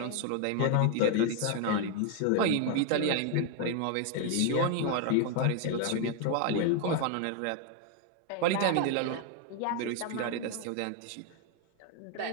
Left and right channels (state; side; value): different; both; correlation 0.01